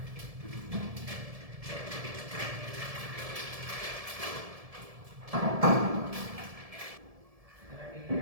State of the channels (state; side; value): late; left; 1.7 ms